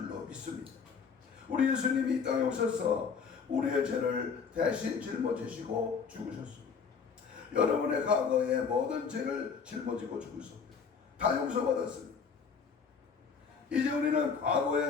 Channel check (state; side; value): quieter; right; 5.9 dB